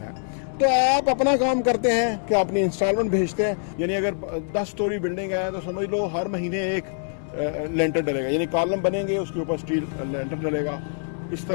तो आप अपना काम करते हैं कि अपनी इंस्टॉलमेंट भेजते हैं। यानी अगर 10 स्टोरी बिल्डिंग है तो समझ लो हर महीने एक लेंटर डलेगा, यानी कॉलम बनेंगे उसके ऊपर स्टील लेंटर डलेगा। इस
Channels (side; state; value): right; silent; digital silence